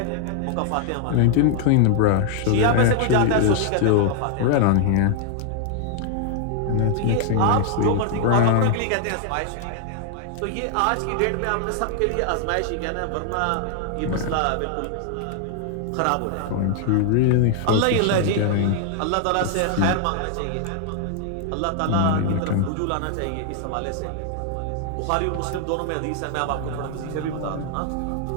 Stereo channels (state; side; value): different; both; correlation 0.00